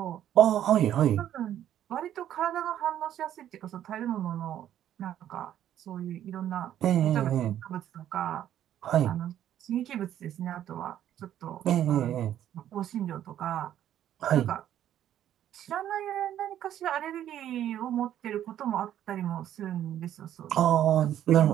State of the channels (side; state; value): left; quieter; 11.2 dB